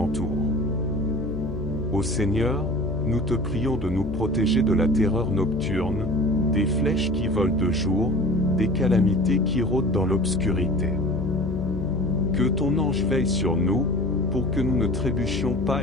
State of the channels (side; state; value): left; noise; hum, 7 dB below the sound